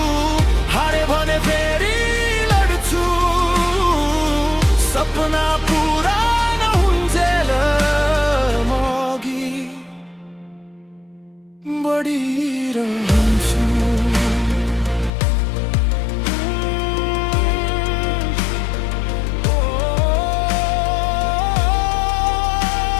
हारे भने फेरि लड्छु। सपना पुरा नहुन्जेल म अघि बढिरहन्छु।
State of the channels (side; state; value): right; drops out; at 15.1 s